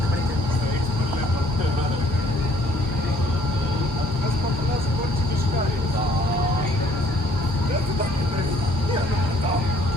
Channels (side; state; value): both; normal; correlation 0.60